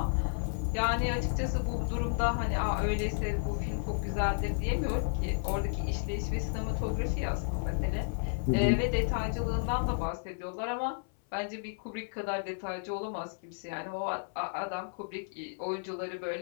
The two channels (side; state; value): right; silent; 56 dB below the other